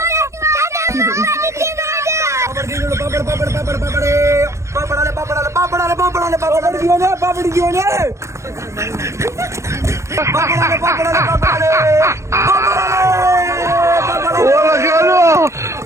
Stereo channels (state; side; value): late; left; 0.14 ms